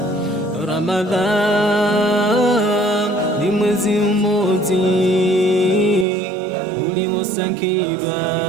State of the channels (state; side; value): drops out; left; at 6.1 s